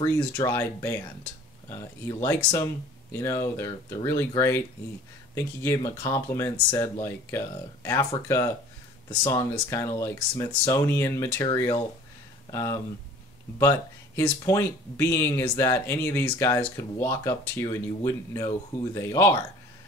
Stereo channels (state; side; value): normal; both; correlation 0.49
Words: band. He likes them, they're really great. I think he gave him a compliment, said like Africa, the song is kind of like Smithsonian material. But his point being is that any of these guys could walk up to you and you wouldn't know who they are.